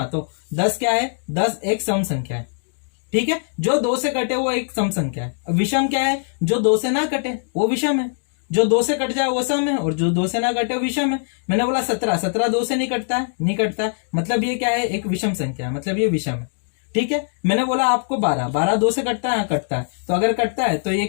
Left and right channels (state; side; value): silent; right; digital silence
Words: तो 10 क्या है, 10 एक सम संख्या है, ठीक है। जो 2 से कटे वो एक सम संख्या है। विषम क्या है, जो 2 से ना कटे वो विषम है, जो 2 से कट जाए वो सम है, और जो 2 से ना कटे वो विषम है। मैंने बोला 17 2 से नहीं कटता है, मतलब ये क्या है, एक विषम संख्या है, मतलब ये विषम है, ठीक है। मैंने बोला आपको 12 2 से कटता है, हाँ कटता है, तो अगर कटता है तो ये